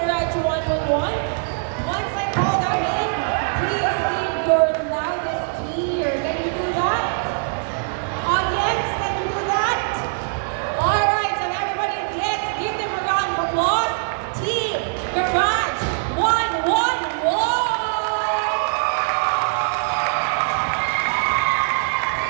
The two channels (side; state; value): left; silent; 62 dB below the other